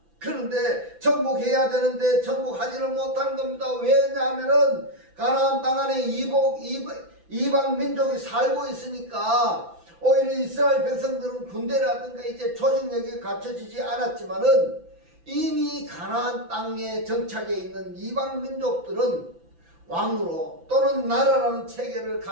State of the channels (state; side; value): late; left; 5.9 ms